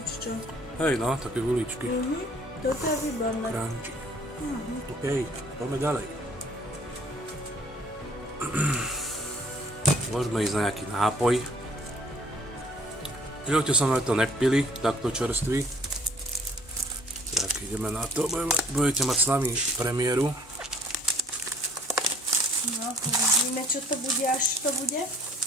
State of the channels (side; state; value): both; normal; correlation 0.57